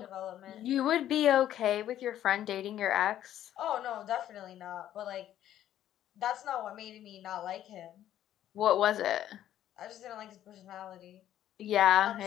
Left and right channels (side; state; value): right; quieter; 11.8 dB